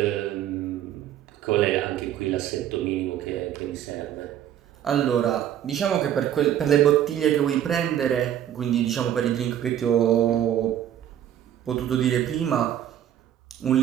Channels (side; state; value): left; quieter; 10.8 dB